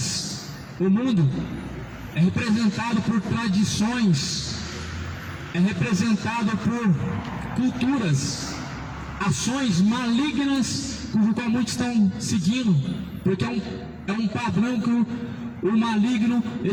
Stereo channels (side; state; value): both; identical; correlation 1.00